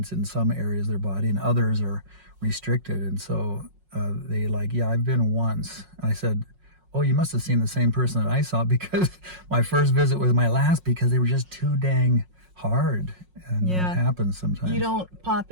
in some areas of their body and others are restricted. And so they like, yeah, I've been once. And I said, oh, you must have seen the same person that I saw, because my first visit was my last because they were just too dang hard. And that happens sometimes. You don't pop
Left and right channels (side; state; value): left; late; 5.5 ms